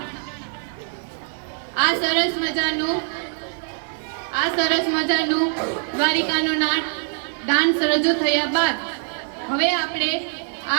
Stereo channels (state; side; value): silent; left; 63 dB below the other